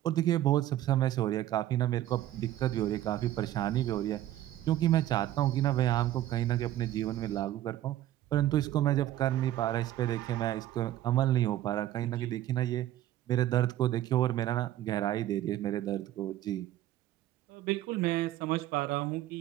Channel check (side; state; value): left; quieter; 13.4 dB